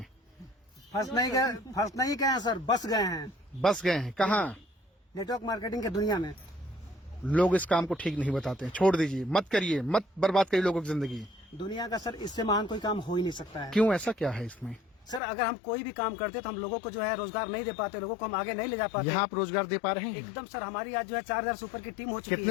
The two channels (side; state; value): right; drops out; at 15.2 s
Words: फंस नहीं गए हैं सर, बस गए हैं। बस गए हैं कहाँ? नेटवर्क मार्केटिंग की दुनिया में। लोग इस काम को ठीक नहीं बताते हैं, छोड़ दीजिए, मत करिए, मत बर्बाद करिए लोगों की जिंदगी। दुनिया का सर इससे महान कोई काम हो ही नहीं सकता है। क्यों, ऐसा क्या है इसमें? सर अगर हम कोई भी काम करते तो हम लोगों को जो है रोजगार नहीं दे पाते, लोगों को हम आगे नहीं ले जा पाते। यहाँ आप रोजगार दे पा रहे हैं? एकदम सर, हमारी आज जो है 4000 से ऊपर की टीम हो चुकी है।